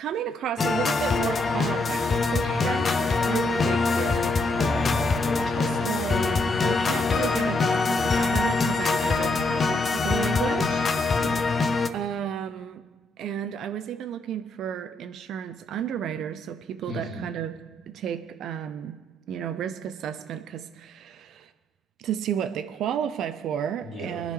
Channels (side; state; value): both; normal; correlation 0.75